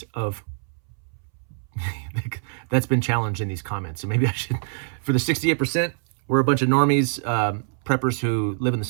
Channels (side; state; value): left; silent; 62 dB below the other